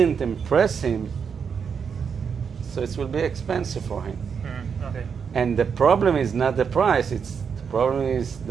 impress him, so it will be expensive for him. Okay. And the problem is not the price, the problem is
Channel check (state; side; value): quieter; left; 6.6 dB